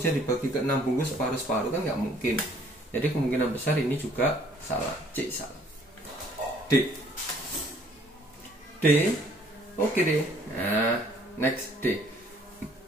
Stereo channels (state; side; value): normal; both; correlation 0.59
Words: dibagi ke 6 bungkus separuh-separuh, kan nggak mungkin. Jadi kemungkinan besar ini juga salah. C salah. D. D. Oke deh. Nah, next D.